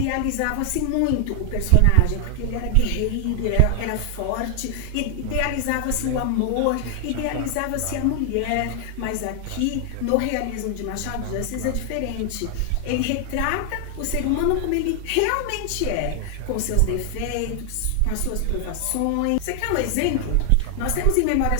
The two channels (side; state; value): both; different; correlation 0.00